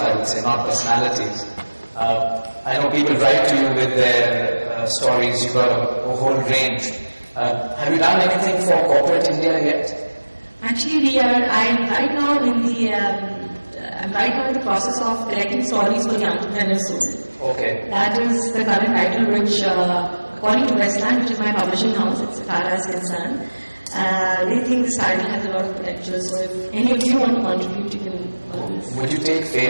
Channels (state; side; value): inverted; both; correlation -1.00